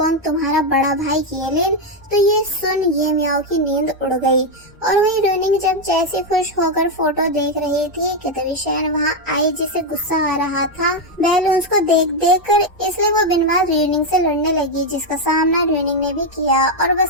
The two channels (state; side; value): normal; both; correlation 0.04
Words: तुम्हारा बड़ा भाई येलिन। तो ये सुन ये म्याओ की नींद उड़ गई। और वही रोइनिंग जब जैसे खुश होकर फोटो देख रही थी कि तभी शैन वहाँ आई जिसे गुस्सा आ रहा था बैलून्स को देख देख कर, इसलिए वो बिन बात रोइनिंग से लड़ने लगी, जिसका सामना रोइनिंग ने भी किया। और